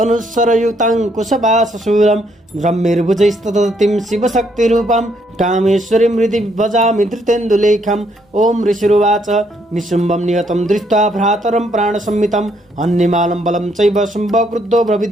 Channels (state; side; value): normal; both; correlation 0.71